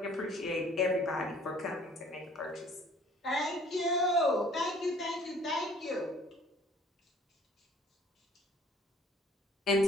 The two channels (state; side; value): normal; both; correlation 0.54